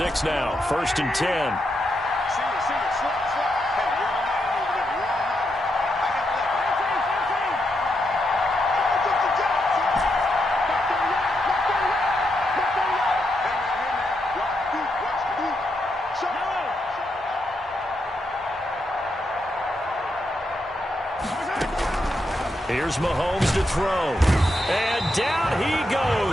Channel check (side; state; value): both; normal; correlation 0.82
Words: now, first and 10. Here's Mahomes to throw. And down he